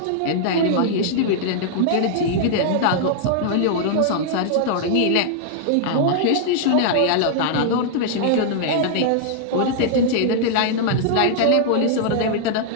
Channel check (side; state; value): both; different; correlation -0.01